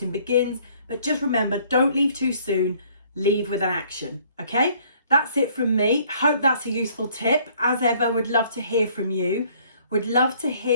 begins. But just remember, don't leave too soon, leave with an action, okay? That's it from me. Hope that's a useful tip. As ever, would love to hear from you. Would love to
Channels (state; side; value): inverted; both; correlation -0.60